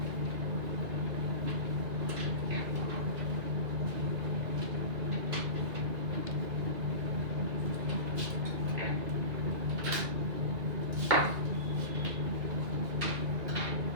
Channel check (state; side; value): late; left; 2.4 ms